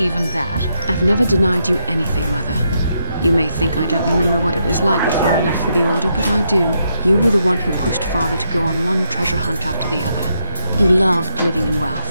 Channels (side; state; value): both; inverted; correlation -0.79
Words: that? I've never denied you anything, Mother. You may think I don't remember what it was like before I left for the Order, but I do. You were the one who pushed Father to go on one treasure hunt after the other. You loved living in